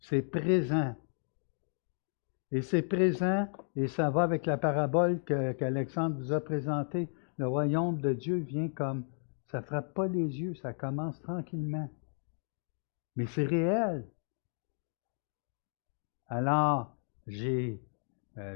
présent. Et c'est présent, et ça va avec la parabole qu'Alexandre vous a présentée. Le royaume de Dieu vient comme, ça ne frappe pas les yeux, ça commence tranquillement. Mais c'est réel. Alors, j'ai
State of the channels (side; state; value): right; silent; 55 dB below the other